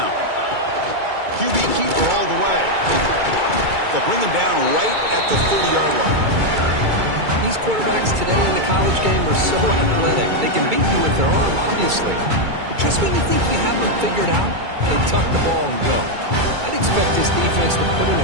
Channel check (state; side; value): late; left; 2.3 ms